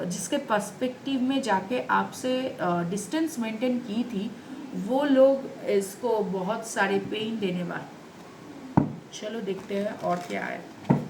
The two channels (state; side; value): identical; both; correlation 1.00